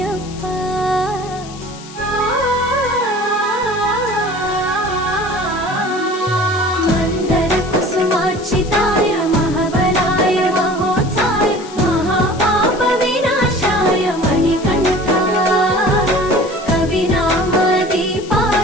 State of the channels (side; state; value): left; noise; hiss, 18 dB below the sound